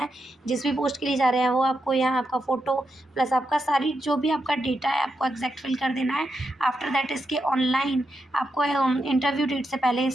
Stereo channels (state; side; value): normal; both; correlation 0.85